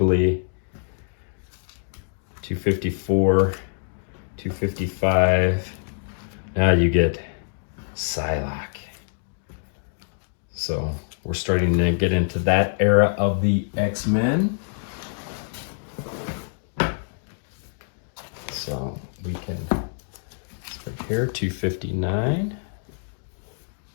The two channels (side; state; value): right; silent; digital silence